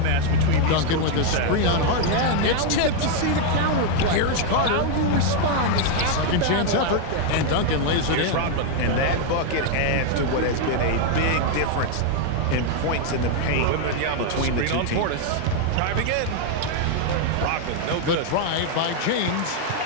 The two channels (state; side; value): different; both; correlation 0.01